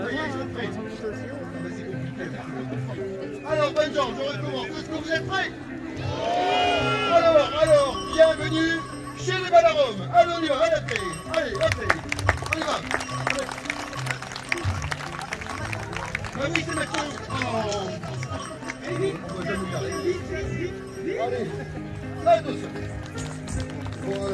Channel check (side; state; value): both; identical; correlation 1.00